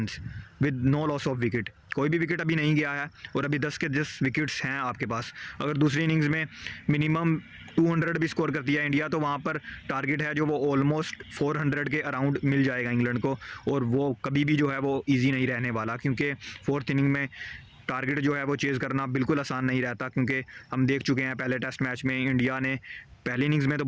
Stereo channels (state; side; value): identical; both; correlation 1.00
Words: with no loss of wicket. कोई भी विकेट अभी नहीं गया है, और अभी 10 के 10 विकेट्स हैं आपके पास। अगर दूसरी इनिंग्स में मिनिमम 200 भी स्कोर करती है इंडिया, तो वहाँ पर टारगेट है जो वो ऑलमोस्ट 400 के अराउंड मिल जाएगा इंग्लैंड को, और वो कभी भी जो है वो ईजी नहीं रहने वाला, क्योंकि 4th इनिंग में टारगेट जो है वो चेज़ करना बिल्कुल आसान नहीं रहता। क्योंकि हम देख चुके हैं पहले टेस्ट मैच में इंडिया ने पहली इनिंग्स में तो